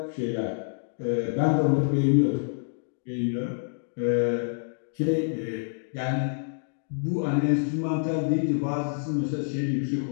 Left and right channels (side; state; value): right; silent; digital silence